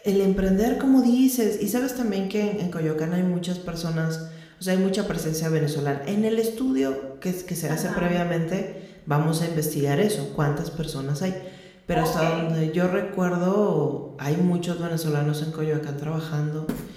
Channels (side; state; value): both; identical; correlation 1.00